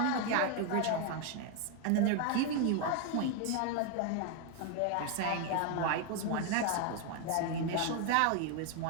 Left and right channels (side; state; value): both; different; correlation 0.01